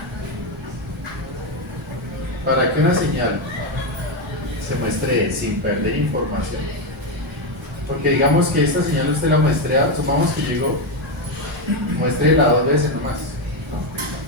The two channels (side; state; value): both; normal; correlation 0.08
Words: Para que una señal se muestre sin perder información, porque digamos que esta señal usted la muestrea, supongamos que llegó, muéstrela 2 veces nomás.